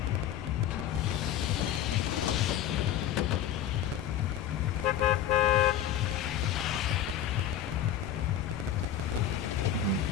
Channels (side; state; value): right; quieter; 10.2 dB